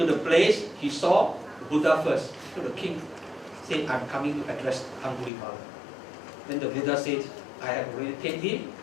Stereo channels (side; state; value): right; drops out; at 5.3 s